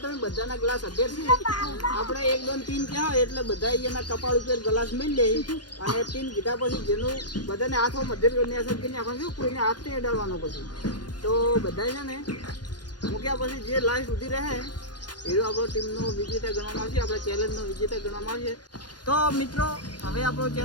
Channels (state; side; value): late; right; 0.70 ms